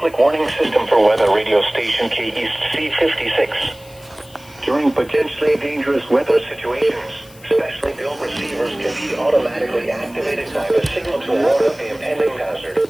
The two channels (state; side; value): noise; left; hiss, 24 dB below the sound